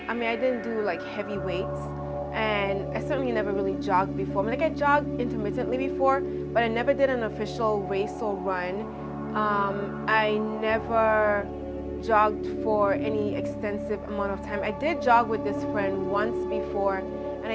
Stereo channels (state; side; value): identical; both; correlation 1.00